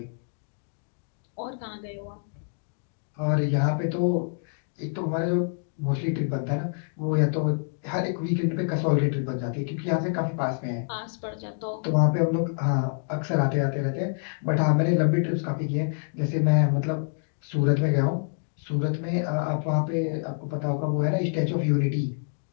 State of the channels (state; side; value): silent; right; digital silence